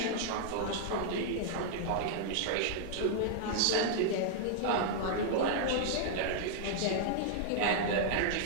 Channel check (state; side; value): different; both; correlation -0.01